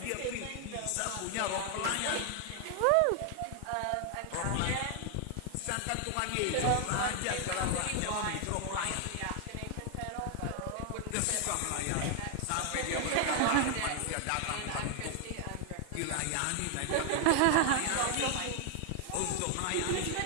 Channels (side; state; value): both; different; correlation 0.00